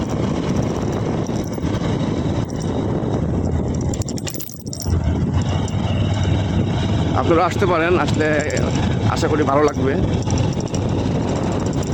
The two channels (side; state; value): both; identical; correlation 1.00